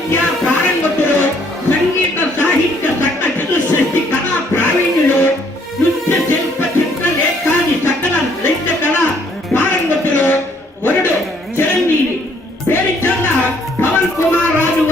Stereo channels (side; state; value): both; normal; correlation 0.65